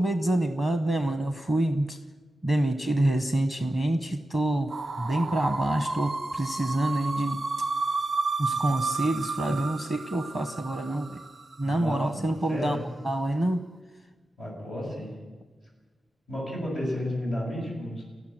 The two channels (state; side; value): normal; both; correlation 0.91